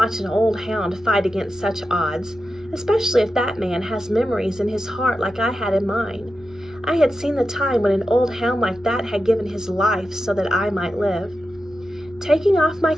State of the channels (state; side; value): normal; both; correlation 0.90